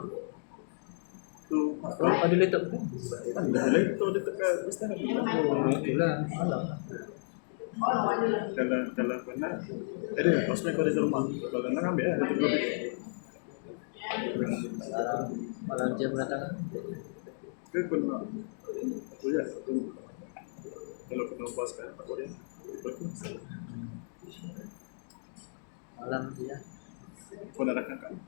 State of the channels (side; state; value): right; silent; digital silence